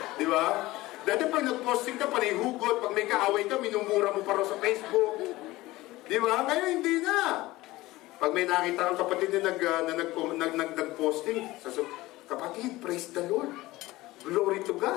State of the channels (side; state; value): right; quieter; 18.6 dB